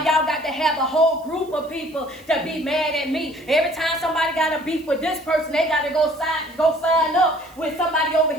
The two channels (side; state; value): right; noise; hiss, 27 dB below the sound